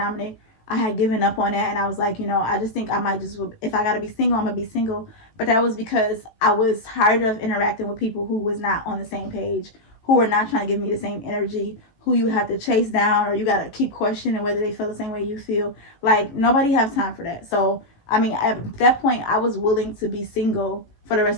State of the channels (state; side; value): late; right; 18 ms